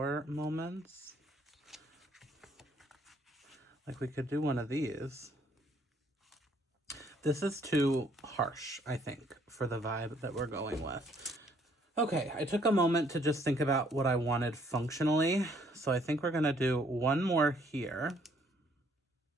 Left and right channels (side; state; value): both; normal; correlation 0.65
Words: moments. Like, we could do one of these. This is too harsh, I think, for the vibe that we're going with. Okay, I took a moment to just think about what I wanted functionally. So I think we're gonna do one more here.